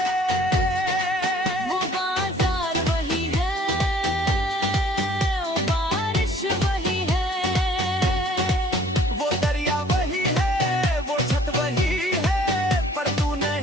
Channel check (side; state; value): both; normal; correlation 0.55